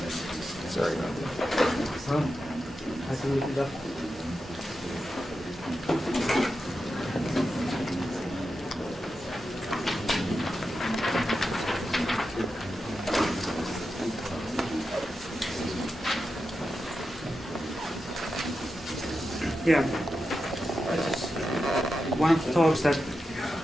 Sorry about that. I can look it up. Yeah, it's one of the talks that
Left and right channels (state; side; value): normal; both; correlation 0.90